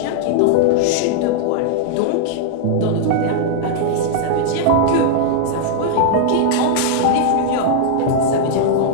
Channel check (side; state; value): both; different; correlation -0.01